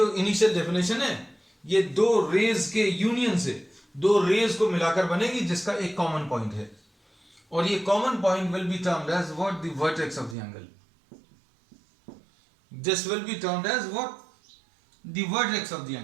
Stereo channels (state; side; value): drops out; left; at 10.4 s